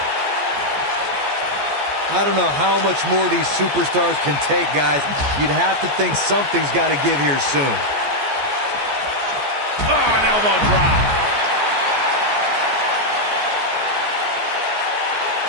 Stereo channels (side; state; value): left; late; 14 ms